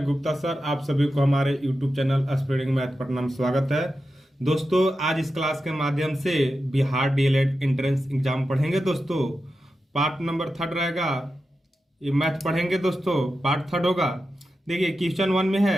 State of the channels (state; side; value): normal; both; correlation 0.90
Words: गुप्ता सर आप सभी को हमारे YouTube channel spreading math Patna में स्वागत है। दोस्तों, आज इस क्लास के माध्यम से बिहार डीएलएड एंट्रेंस एग्जाम पढ़ेंगे। दोस्तों, पार्ट नंबर 3 रहेगा, ये मैथ पढ़ेंगे। दोस्तों, पार्ट 3 होगा। देखिए, क्वेश्चन 1 में